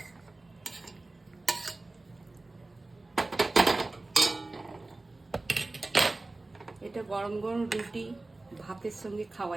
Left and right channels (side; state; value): left; quieter; 3.1 dB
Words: এটা গরম গরম রুটি ভাতের সঙ্গে খাওয়া